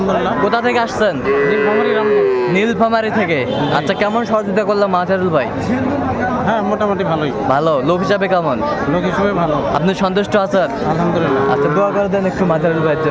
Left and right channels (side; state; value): both; identical; correlation 1.00